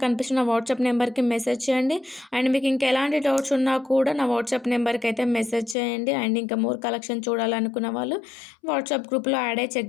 కనిపిస్తున్న వాట్సాప్ నెంబర్కి మెసేజ్ చేయండి. అండ్ మీకు ఇంకా ఎలాంటి డౌట్స్ ఉన్నా కూడా నా వాట్సాప్ నెంబర్కి అయితే మెసేజ్ చేయండి. అండ్ ఇంకా మోర్ కలెక్షన్ చూడాలనుకున్న వాళ్ళు వాట్సాప్ గ్రూప్లో యాడ్ అయ్యి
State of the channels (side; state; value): right; drops out; at 5.8 s